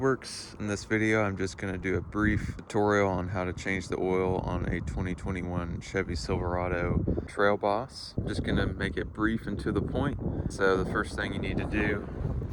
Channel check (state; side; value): identical; both; correlation 1.00